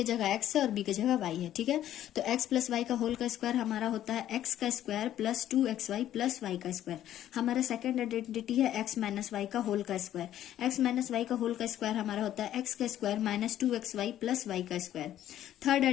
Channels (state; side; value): quieter; right; 12.0 dB